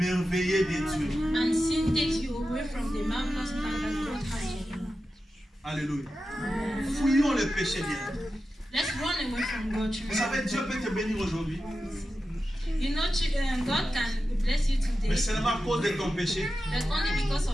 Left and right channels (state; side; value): normal; both; correlation 0.92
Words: de Dieu. And sin takes you away from the marvelous plan that God has for you. Alléluia. Fuyons les péchés bien. Let's run away from God. Vous savez, Dieu peut te bénir aujourd'hui, You know, God can bless you today, mais seulement à cause de ton péché. but only because